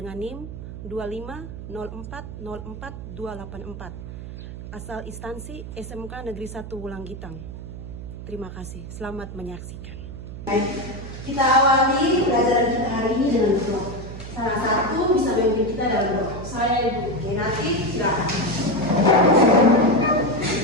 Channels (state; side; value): noise; right; hum, 10 dB below the sound